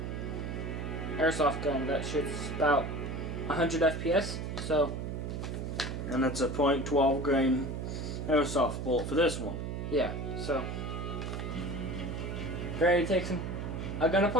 airsoft gun that shoots about 100 FPS. So, and it's a .12 grain airsoft bullet for this one. Yeah. So, ready to take a gun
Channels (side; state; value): right; noise; hum, 4 dB below the sound